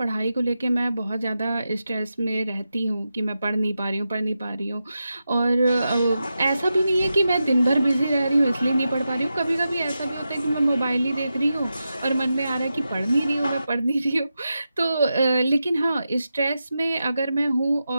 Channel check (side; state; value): both; inverted; correlation -0.90